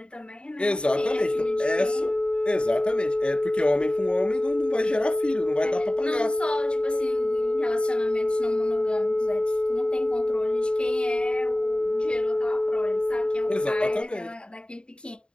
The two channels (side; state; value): right; late; 0.052 ms